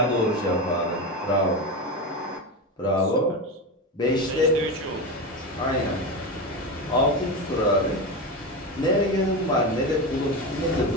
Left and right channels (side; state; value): both; normal; correlation 0.19